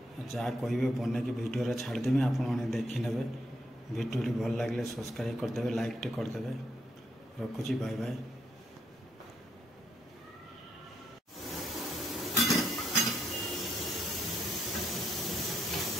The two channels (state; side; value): normal; both; correlation 0.76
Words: जहाँ कहे बन कि भिडियो छाड़देवी आपण देखने भिडियो भल लगे सब्सक्राइब करदे लाइक टे करदे रखुची बाय बाय।